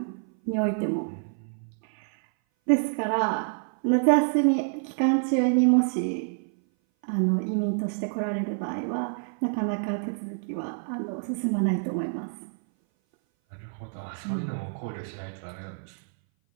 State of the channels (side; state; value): left; silent; 58 dB below the other